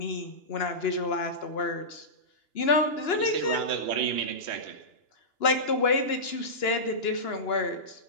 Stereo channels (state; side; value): late; right; 2.9 ms